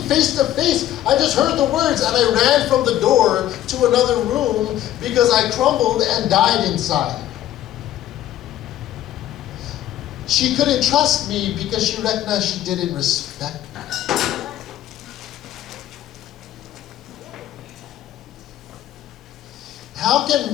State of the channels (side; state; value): right; quieter; 12.8 dB